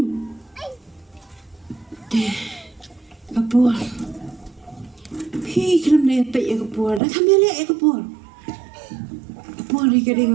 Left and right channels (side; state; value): left; drops out; at 7.0 s